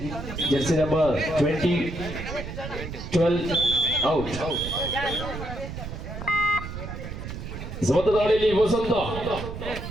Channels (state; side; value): noise; right; rumble, 8 dB below the sound